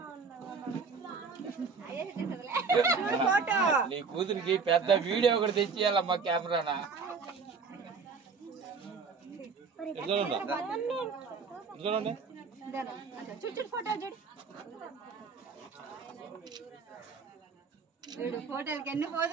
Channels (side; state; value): left; quieter; 5.1 dB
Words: ఫోటో నీ కూతురికి పెద్ద వీడియో ఒకటి తెచ్చియాలమ్మా కెమెరానా చూడు ఫోటో చూడు చూడు ఫోటోలకి ఎన్ని